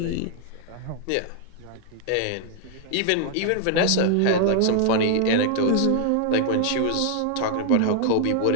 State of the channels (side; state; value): both; different; correlation 0.00